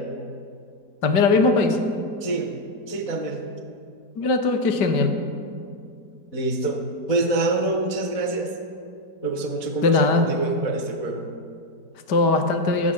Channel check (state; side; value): late; right; 4.1 ms